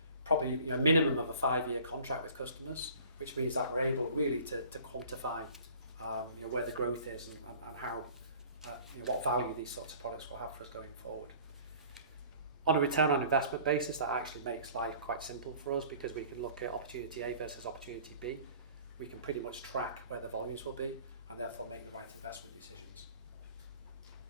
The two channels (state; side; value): inverted; both; correlation -0.48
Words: probably a minimum of a 5-year contract with customers, which means that we're able really to quantify where the growth is and how what value these sorts of products will have for us going forward. On a return on investment basis, that actually makes life quite simple for us, because we can look at opportunity A versus opportunity B. We can pretty much track where the volumes will be and therefore make the right investment decisions.